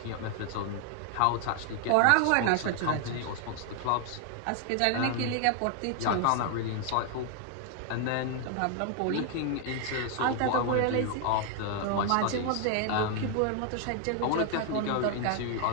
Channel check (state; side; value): different; both; correlation 0.00